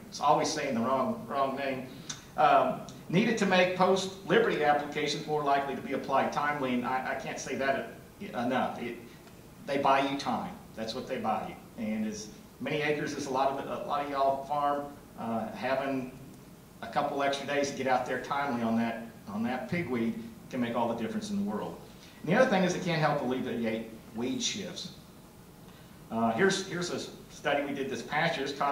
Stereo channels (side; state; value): both; identical; correlation 1.00